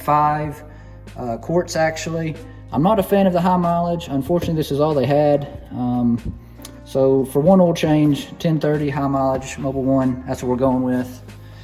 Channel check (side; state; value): both; identical; correlation 1.00